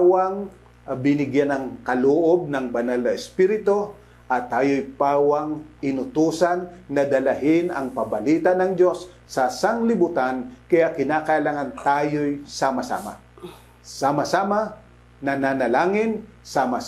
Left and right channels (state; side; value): identical; both; correlation 1.00